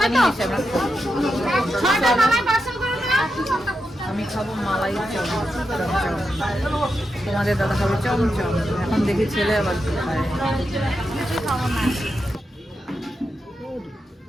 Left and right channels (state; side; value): normal; both; correlation 0.87